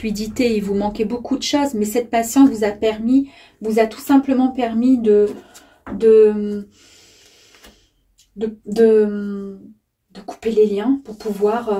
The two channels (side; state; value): both; identical; correlation 1.00